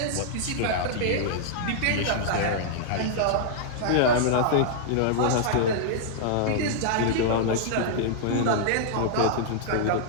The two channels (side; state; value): both; different; correlation -0.01